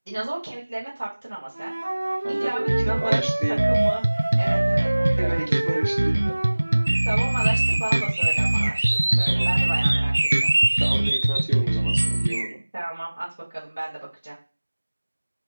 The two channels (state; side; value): inverted; both; correlation -1.00